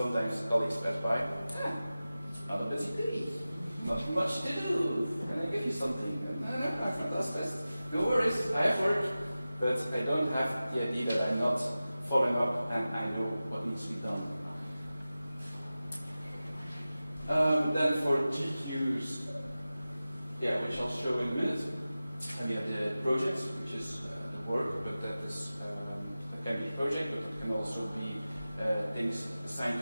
colleagues pass by, not a busy day, not much to do. Can I give you something? No, I've not lost this. No worries, I have work, but I don't have the idea that I'm not following up and I know what needs to be done. Then for GQs, yeah, which I'll show in a minute. And we have the projects, which is the work, but that is it can be a project, but it can also be things assigned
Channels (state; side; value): inverted; both; correlation -0.96